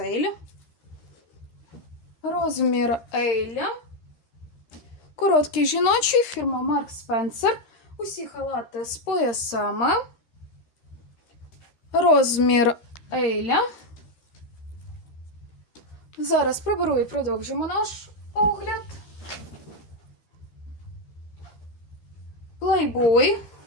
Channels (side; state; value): right; late; 13 ms